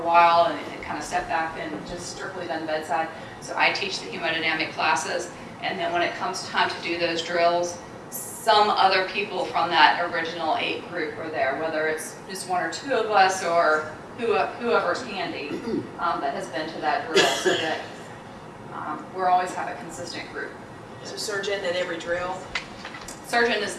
while and kind of stepped back and just strictly done bedside. So I teach the hemodynamic classes, and then when it comes time to do those drills, some other people from that original 8 group are there, whether it's just 1 or 2 of us or whoever's handy that has been to that drill, so that we'll always have a consistent group. So surgeon at every drill? Surgeon is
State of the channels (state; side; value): identical; both; correlation 1.00